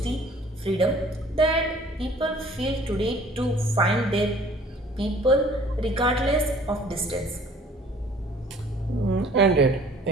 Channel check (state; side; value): normal; both; correlation 0.53